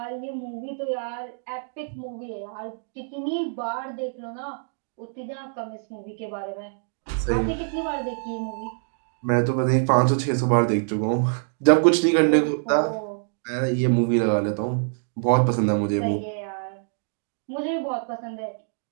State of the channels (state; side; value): silent; left; digital silence